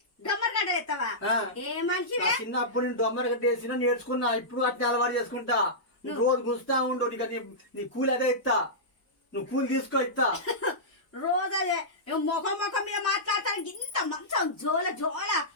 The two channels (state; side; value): late; right; 1.6 ms